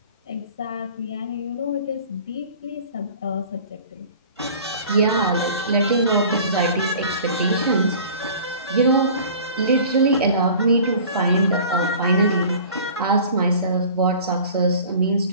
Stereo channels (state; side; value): inverted; both; correlation -0.44